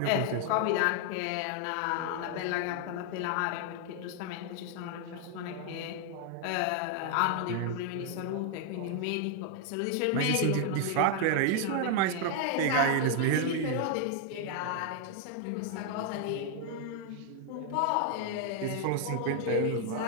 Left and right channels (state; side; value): different; both; correlation 0.00